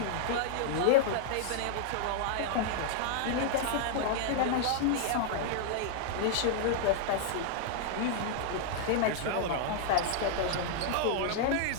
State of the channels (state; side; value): different; both; correlation -0.01